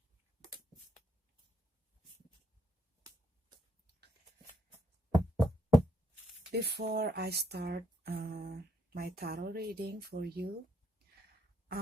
Before I start my tarot reading for you,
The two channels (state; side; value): normal; both; correlation 0.76